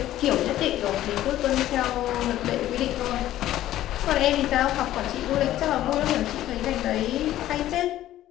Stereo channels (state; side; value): quieter; right; 13.6 dB